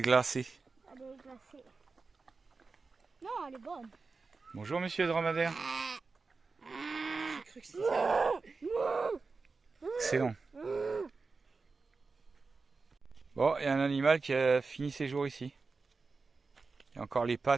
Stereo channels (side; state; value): left; quieter; 4.2 dB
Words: glacée? Elle est glacée. Non, elle est bonne. Bonjour monsieur le dromadaire. Excellent. Bon, il y a un animal qui a fini ses jours ici. Il y a encore les